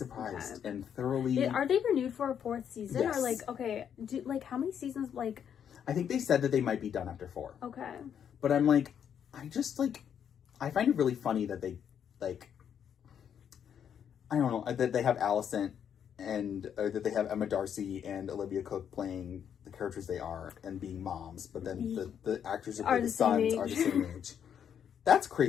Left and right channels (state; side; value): quieter; right; 8.5 dB